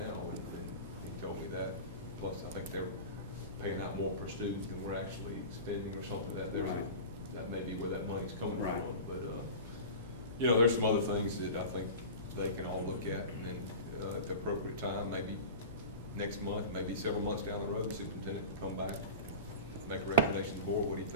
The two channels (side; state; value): both; inverted; correlation -0.33